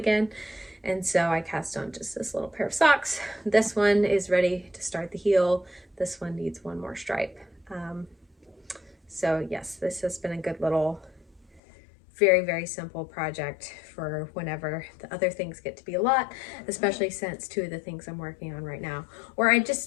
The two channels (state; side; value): drops out; right; at 11.6 s